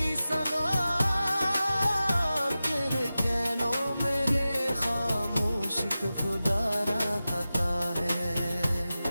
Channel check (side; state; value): both; inverted; correlation -0.94